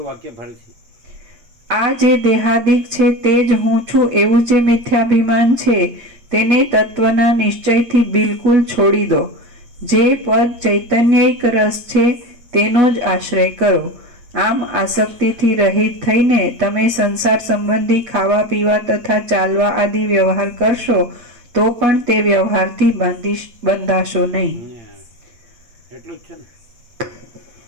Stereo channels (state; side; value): late; left; 8.7 ms